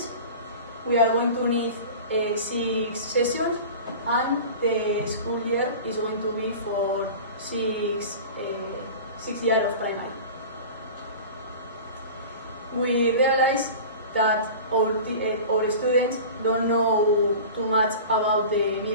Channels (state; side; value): inverted; both; correlation -0.36